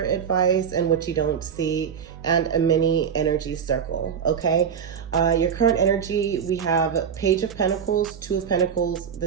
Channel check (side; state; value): left; quieter; 7.5 dB